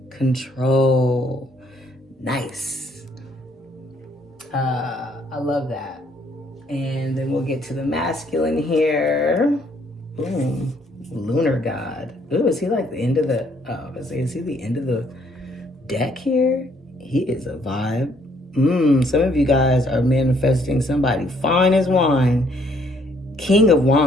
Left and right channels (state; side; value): normal; both; correlation 0.66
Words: control. Nice. I love that. And then we'll get to the masculine here. Boom. Lunar god. Ooh, is he like the end of the, is he the end of the deck here? He is a vibe. Some of you guys are manifesting somebody fine as wine. King of